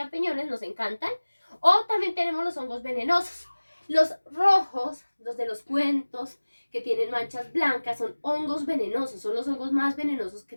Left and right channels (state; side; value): inverted; both; correlation -1.00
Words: nos encantan. O también tenemos los hongos venenosos. Los rojos, los de los cuentos, que tienen manchas blancas, son hongos venenosos, son los hongos más venenosos que